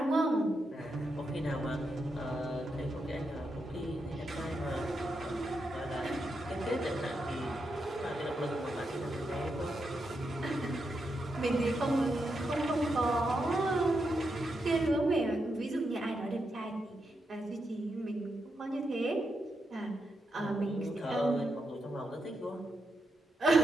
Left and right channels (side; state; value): both; normal; correlation 0.84